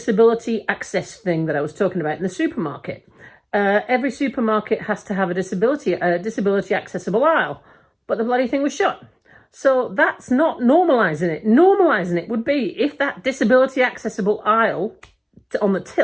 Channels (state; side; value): identical; both; correlation 1.00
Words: access thing that I was talking about in the supermarket. Every supermarket has to have a disability accessible aisle, but the bloody thing was shut. So that's not normalising it. Normalising it would be if that disability accessible aisle on the